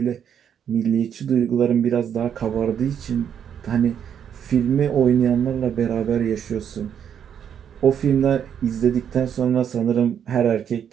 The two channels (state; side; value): quieter; left; 8.6 dB